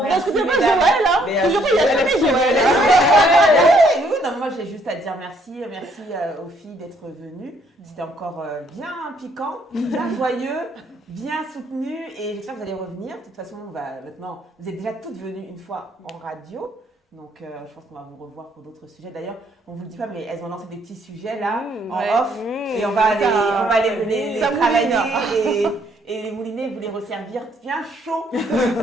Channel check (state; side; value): normal; both; correlation 0.68